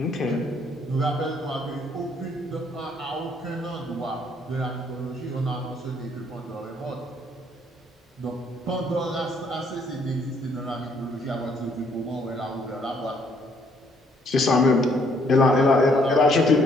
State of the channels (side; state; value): both; normal; correlation 0.67